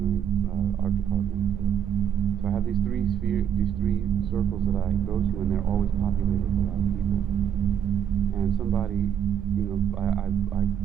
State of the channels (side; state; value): left; quieter; 8.9 dB